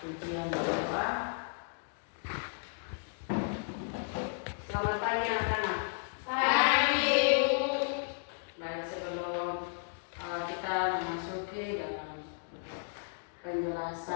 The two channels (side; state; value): right; silent; digital silence